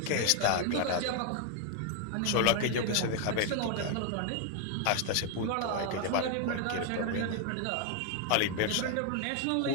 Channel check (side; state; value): both; different; correlation 0.00